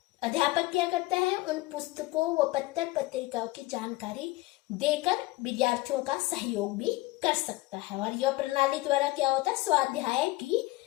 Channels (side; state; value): right; quieter; 20.0 dB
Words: अध्यापक क्या करता है, उन पुस्तकों व पत्र पत्रिकाओं की जानकारी देकर विद्यार्थियों का सहयोग भी कर सकता है। और यह प्रणाली द्वारा क्या होता है, स्वाध्याय की